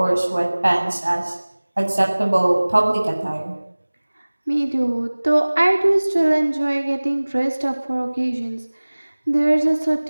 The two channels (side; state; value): both; inverted; correlation -1.00